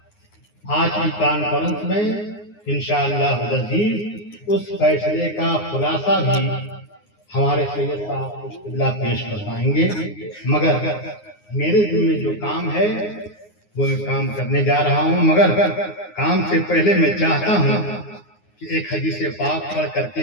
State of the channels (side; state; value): right; late; 9.6 ms